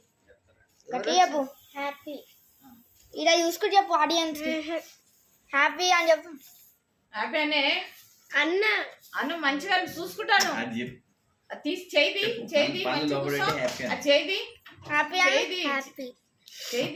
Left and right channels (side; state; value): both; identical; correlation 1.00